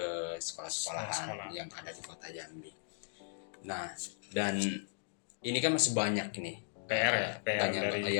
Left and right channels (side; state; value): right; silent; digital silence